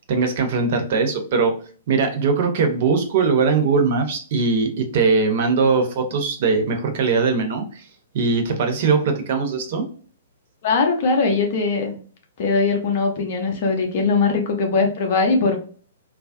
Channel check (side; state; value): both; inverted; correlation -0.32